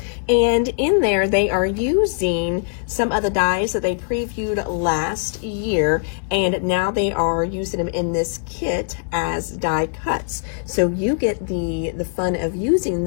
And in there, they are using some of the dies that they previewed last year, and now they are using them in this kit as die cuts. So you get the fun of using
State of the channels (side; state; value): right; silent; digital silence